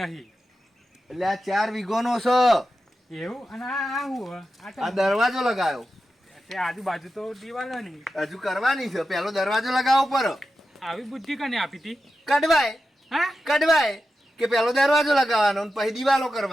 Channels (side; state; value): both; normal; correlation 0.91